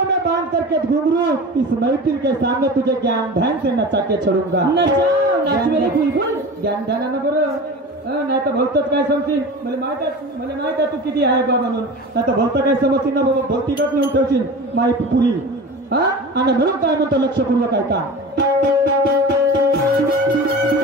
में बांध करके घुंघरू इस महफिल के सामने तुझे ज्ञान ध्यान से नचा के छोड़ूंगा. नाच मेरे बुलबुल. ज्ञान ध्यानानं बरं, नाही तर भलतच काय समजतील. मला माहित आहे तू किती आहे बा म्हणून. नाही तर भलत काय समजतील ना बाबा, भौतिकच नेऊन ठेवशील माई पुरी. आणि म्हणून काय म्हणतो लक्षपूर्वक ऐका.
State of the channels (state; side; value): normal; both; correlation 0.33